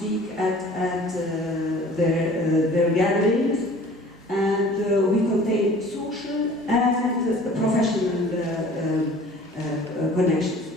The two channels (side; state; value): both; normal; correlation 0.48